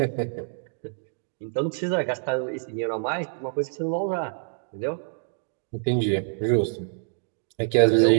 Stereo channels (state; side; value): silent; left; digital silence